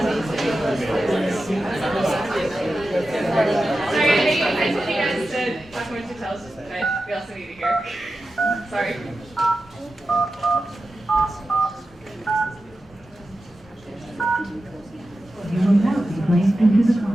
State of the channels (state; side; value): normal; both; correlation 0.92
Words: We also need to hear. Sorry. You will now be placed into the